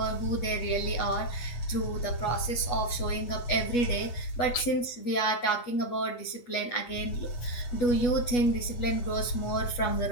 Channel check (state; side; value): late; right; 8.3 ms